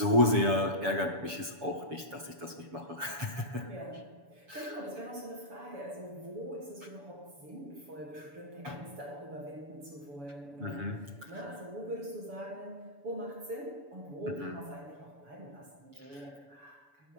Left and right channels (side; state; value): left; late; 7.0 ms